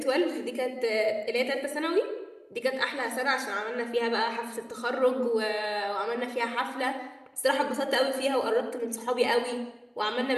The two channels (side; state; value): both; identical; correlation 1.00